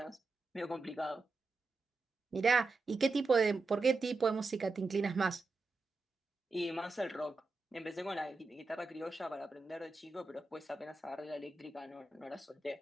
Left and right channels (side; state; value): left; quieter; 3.6 dB